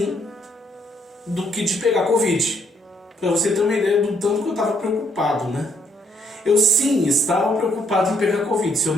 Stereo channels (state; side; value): normal; both; correlation 0.70